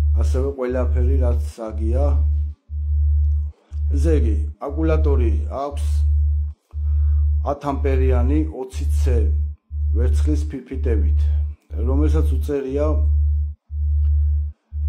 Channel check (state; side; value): identical; both; correlation 1.00